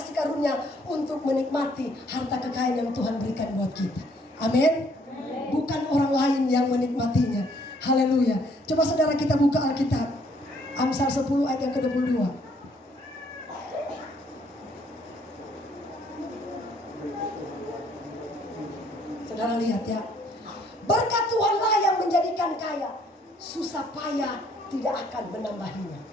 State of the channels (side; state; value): both; normal; correlation 0.65